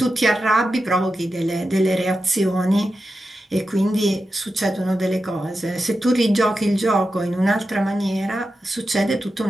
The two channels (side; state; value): both; normal; correlation 0.90